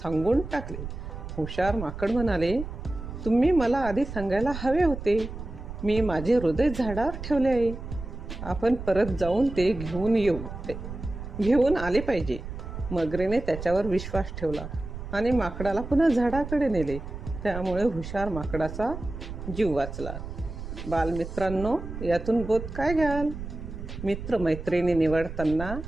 टाकले. हुशार माकड म्हणाले, तुम्ही मला आधी सांगायला हवे होते. मी माझे हृदय झाडावर ठेवले आहे. आपण परत जाऊन ते घेऊन आले पाहिजे. मगरीने त्याच्यावर विश्वास ठेवला आणि माकडाला पुन्हा झाडाकडे नेले. त्यामुळे हुशार माकडाचा जीव वाचला. बालमित्रांनो, यातून बोध काय घ्याल? मित्रमैत्रिणी निवडताना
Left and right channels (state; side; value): noise; right; rumble, 9 dB below the sound